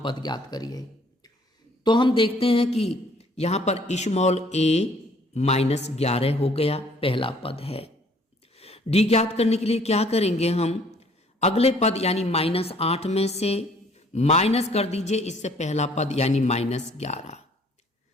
पद ज्ञात करिए। तो हम देखते हैं कि यहां पर स्मॉल ए -11 हो गया, पहला पद है। डी ज्ञात करने के लिए क्या करेंगे, हम अगले पद यानी -8 में से माइनस कर दीजिए इससे पहला पद यानी -11।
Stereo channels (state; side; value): normal; both; correlation 0.59